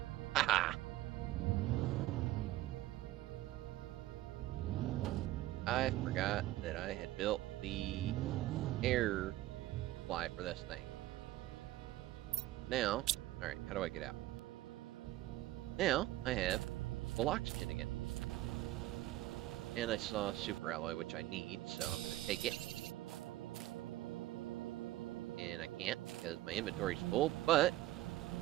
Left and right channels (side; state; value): left; quieter; 16.0 dB